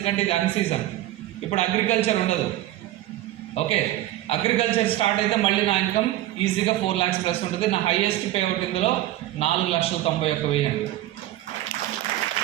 ఇది అన్ సీజన్. ఇప్పుడు అగ్రికల్చర్ ఉండదు. ఓకే, అగ్రికల్చర్ స్టార్ట్ అయితే మళ్ళీ నా ఇన్కమ్ ఈజీగా 4 lakhs ప్లస్ ఉంటుంది. నా హైయెస్ట్ పే అవుట్ ఇందులో 4,91,000 అండి.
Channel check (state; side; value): quieter; left; 14.7 dB